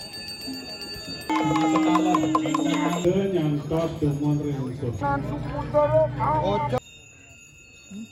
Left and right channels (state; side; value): identical; both; correlation 1.00